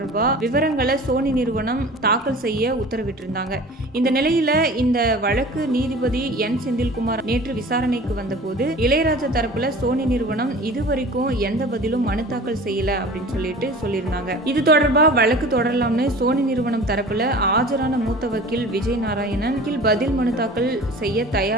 விவரங்களை சோனி நிறுவனம் தாக்கல் செய்ய உத்தரவிட்டிருந்தாங்க. இந்த நிலையில இந்த வழக்கு நீதிபதி என் செந்தில்குமார் நேற்று விசாரணைக்கு வந்தபோது இளையராஜா தரப்புல சோனி நிறுவனம் இதுவரைக்கும் எந்த பதிலும் மனு தாக்கல் செய்யல அப்படின்னு சொல்லியிருந்தாங்க. இது தொடர்பா வழக்கு தொடரலாம்னு சோனி நிறுவனம் தரப்புல ஆஜரான மூத்த வக்கீல் விஜய் நாராயணன் பதில் மனு தாக்கல் செய்ய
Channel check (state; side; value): normal; both; correlation 0.41